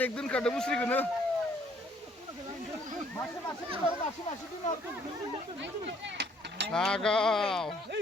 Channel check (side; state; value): both; normal; correlation 0.63